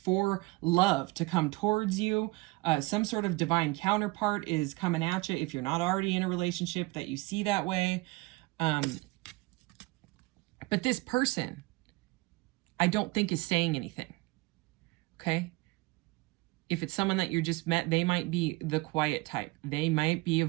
for love to come towards you. Some sort of divine counterpart is coming at you if you're not already in a relationship that you see that way. But this person, I don't think is saying anything, okay? If it's someone that you just met, they might be the quiet type. They might be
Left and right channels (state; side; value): quieter; left; 23.0 dB